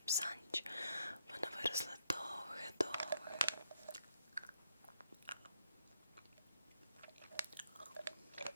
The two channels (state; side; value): inverted; both; correlation -0.77